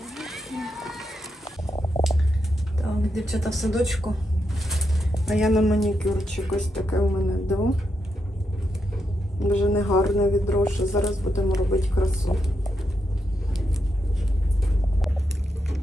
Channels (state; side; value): normal; both; correlation 0.83